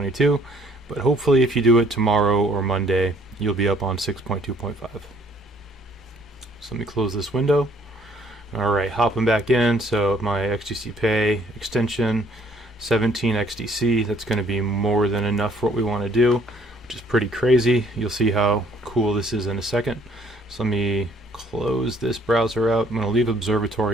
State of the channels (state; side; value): normal; both; correlation 0.61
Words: But hopefully if you do it tomorrow or Monday, you'll be up on 6.2.5. So let me close this window. Alright, hopping back in, so my XDC Pay extension, 17 XDC, that's going to be more than enough for what we want to do, which is pretty crazy. You'll see how cool this is in a second. So let me close this browser out. I'm going to leave